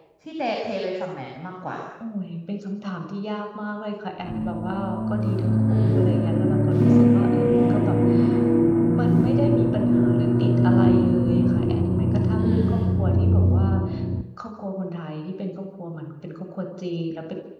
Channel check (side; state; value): both; identical; correlation 1.00